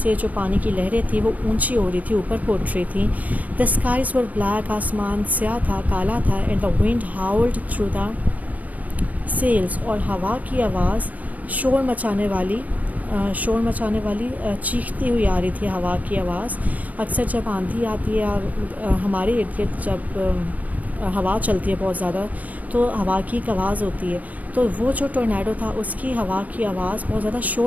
جو پانی کی لہریں تھیں وہ اونچی ہو رہی تھی، اوپر پھوٹ رہی تھیں. the skies were black، آسمان سیاہ تھا، کالا تھا. and the wind howled through the sails، اور ہوا کی آواز شور مچانے والی چیختی ہوئی آ رہی تھی. ہوا کی آواز اکثر جب آندھی آتی ہے ہمارے ارد گرد، جب ہوا چلتی ہے بہت زیادہ تو ہوا کی ایک آواز ہوتی ہے. تو وہ جو ٹورنیڈو تھا اس کی ہوا کی آواز بہت زیادہ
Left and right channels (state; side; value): late; left; 0.073 ms